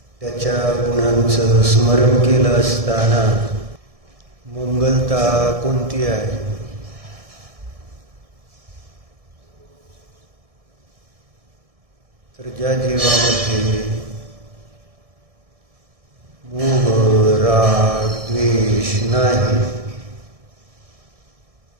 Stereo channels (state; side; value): late; left; 1.6 ms